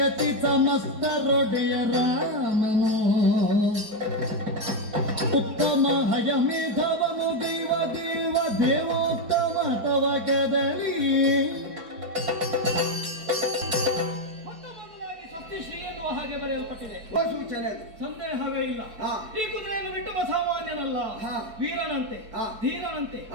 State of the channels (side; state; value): left; late; 4.6 ms